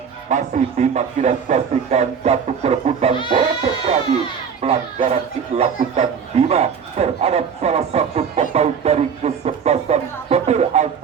Masih Bima. Kita saksikan satu perebutan bola terjadi. Pelanggaran dilakukan Bima terhadap salah satu pemain dari kesebelasan Petir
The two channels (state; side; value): quieter; left; 6.8 dB